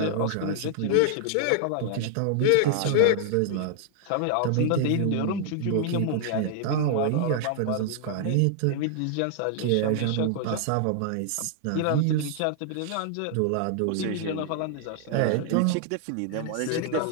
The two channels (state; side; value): different; both; correlation -0.01